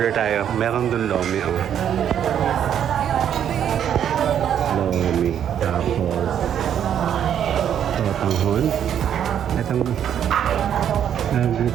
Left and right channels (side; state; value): left; quieter; 9.4 dB